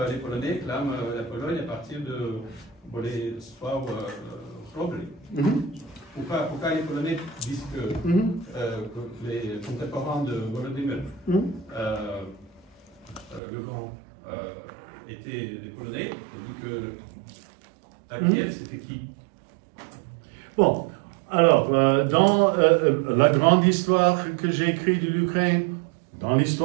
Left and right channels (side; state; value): left; drops out; at 13.4 s